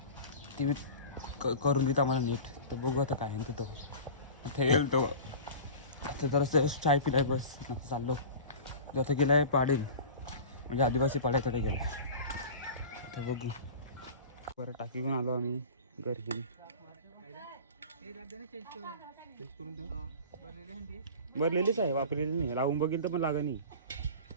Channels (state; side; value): inverted; both; correlation -0.36